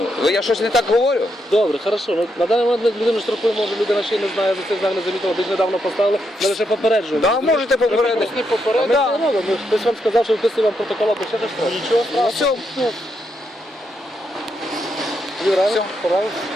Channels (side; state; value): both; normal; correlation 0.80